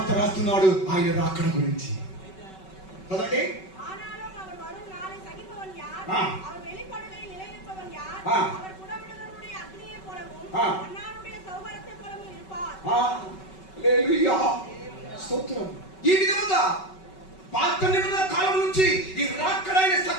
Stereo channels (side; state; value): right; late; 5.3 ms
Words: రాస్తున్నాడు ఆయన రాకడ గురించి. చదవండి. స్తోత్రం. ఈ విధముగా పాత నిబంధన కాలం నుంచి ఈ రాకడైన